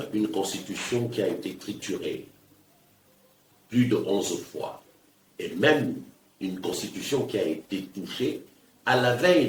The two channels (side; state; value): both; identical; correlation 1.00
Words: une constitution qui a été triturée plus de 11 fois, et même une constitution qui a été touchée à la